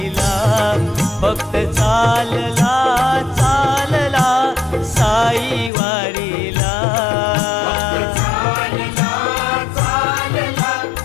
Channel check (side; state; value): right; drops out; at 5.7 s